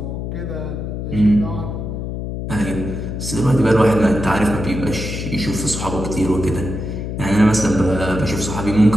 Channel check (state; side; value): noise; left; hum, 5 dB below the sound